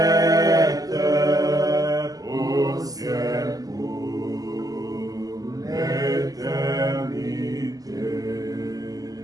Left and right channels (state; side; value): late; left; 0.17 ms